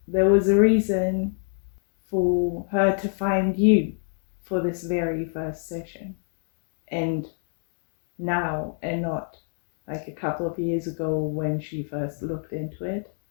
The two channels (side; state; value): right; silent; 61 dB below the other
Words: there was a reason for her to find you for this very first session. And now, and not like a couple of years ago when she first looked into it.